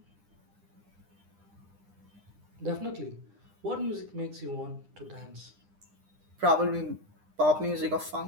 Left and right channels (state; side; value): late; left; 9.9 ms